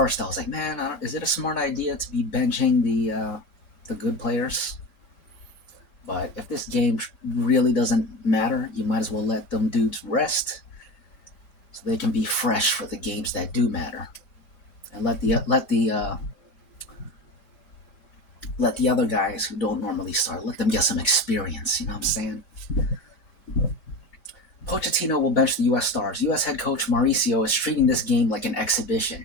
I was like, man, is it a smart idea to be benching the good players? But if this game really doesn't matter, you might as well let them dudes rest so they can be fresh for the games that do matter. And let the other guys who don't normally start, let them get some experience, you know what I'm saying? Pochettino will bench the U.S. stars. U.S. head coach Mauricio is treating this game like an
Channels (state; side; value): late; right; 5.0 ms